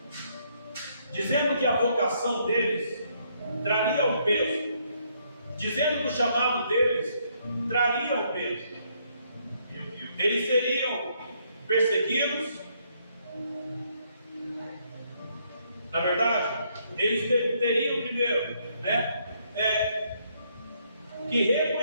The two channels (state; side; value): inverted; both; correlation -0.71